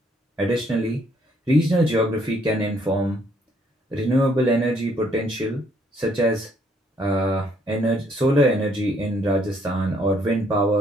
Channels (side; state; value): both; normal; correlation 0.68